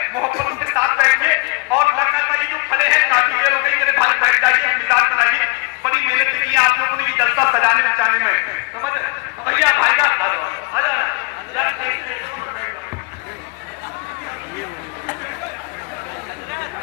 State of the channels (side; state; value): right; quieter; 28.0 dB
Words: मोहब्बत के साथ बैठिए, और लगना चाहिए जो खड़े हैं काफी देर हो गई, मेरे भाई बैठ जाइए, मिजाज बनाइए। बड़ी मेहनत की है आप लोगों ने ये जलसा सजाने बचाने में, समझ रहे भैया? भाई का आ जाओ